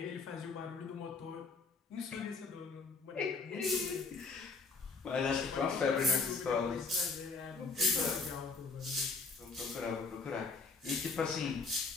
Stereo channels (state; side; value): quieter; right; 4.2 dB